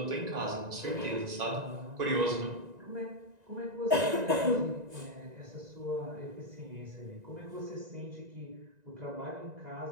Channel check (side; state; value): left; late; 1.9 ms